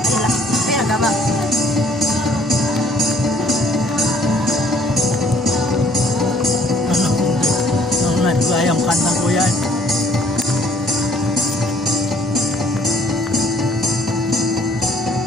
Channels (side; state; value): both; normal; correlation 0.60